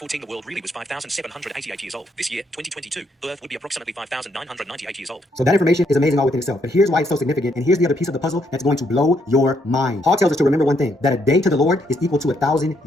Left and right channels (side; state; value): both; normal; correlation 0.74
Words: the world really was 5,788 years old. This year, 2022, the Earth would be approximately 5,998 years old. So that information is amazing all within itself. But here's why it's so significant, and here's the other piece of the puzzle that's going to blow your mind. Paul tells us to remember one thing, that a day to the Lord is equal to 1,000